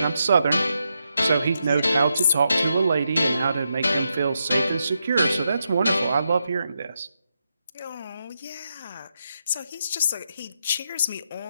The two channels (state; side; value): inverted; both; correlation -0.84